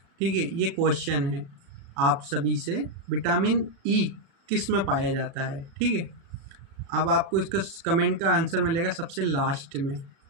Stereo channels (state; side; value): late; left; 36 ms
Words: ठीक है, ये क्वेश्चन है आप सभी से। विटामिन ई किस में पाया जाता है? ठीक है, अब आपको इसका कमेंट का आंसर मिलेगा सबसे लास्ट में।